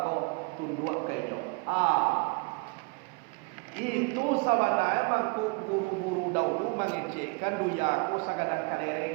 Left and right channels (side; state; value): left; quieter; 29.3 dB